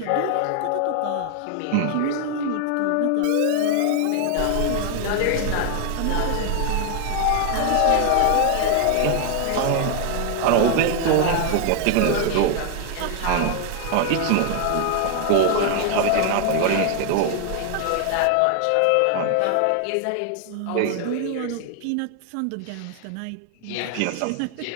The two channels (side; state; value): both; different; correlation 0.00